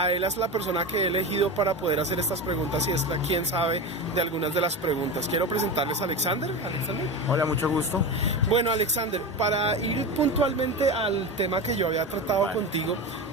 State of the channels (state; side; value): normal; both; correlation 0.23